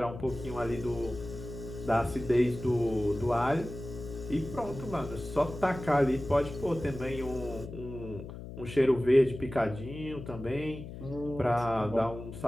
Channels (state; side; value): noise; left; hum, 11 dB below the sound